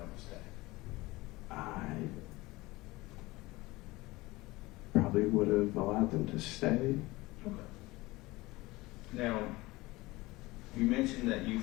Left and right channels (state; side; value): quieter; right; 20.6 dB